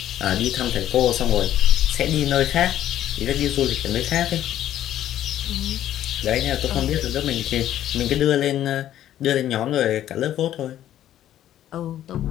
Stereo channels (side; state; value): right; quieter; 12.0 dB